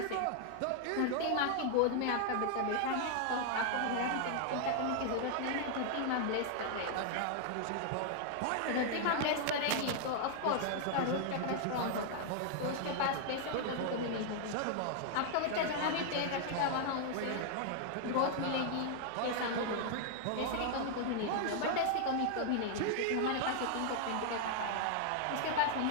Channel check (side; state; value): both; different; correlation 0.00